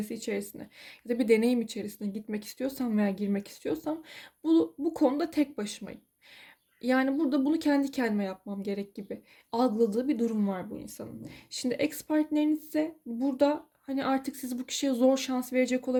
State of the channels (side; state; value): both; identical; correlation 1.00